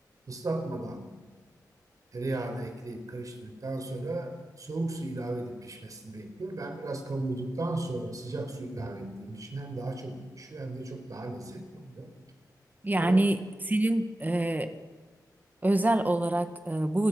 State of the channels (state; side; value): normal; both; correlation 0.93